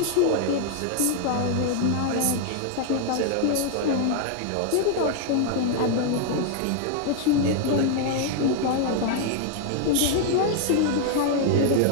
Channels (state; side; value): different; both; correlation 0.00